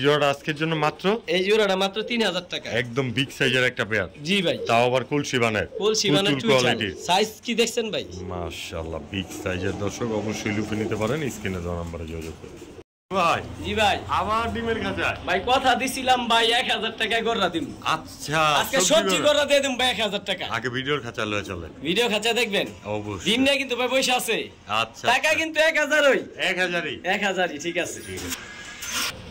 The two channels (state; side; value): identical; both; correlation 1.00